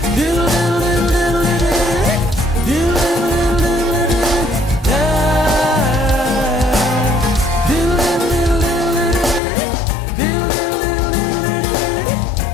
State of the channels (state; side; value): drops out; right; at 9.4 s